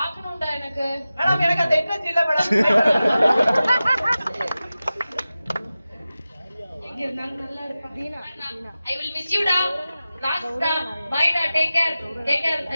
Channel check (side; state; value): both; inverted; correlation -0.95